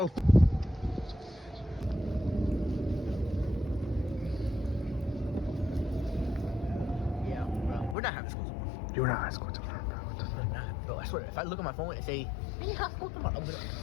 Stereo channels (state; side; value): drops out; right; at 8.0 s